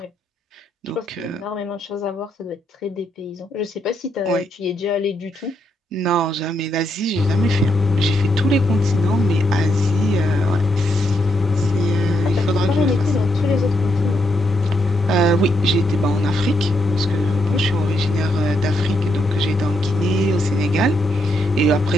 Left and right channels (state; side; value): normal; both; correlation 0.79